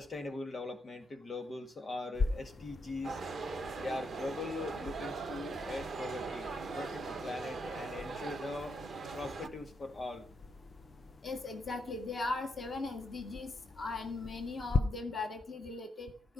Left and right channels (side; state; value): both; normal; correlation 0.80